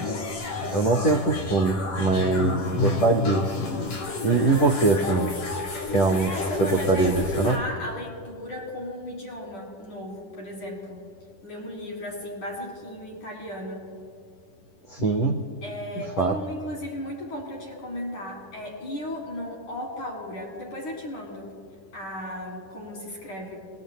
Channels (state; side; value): late; right; 10 ms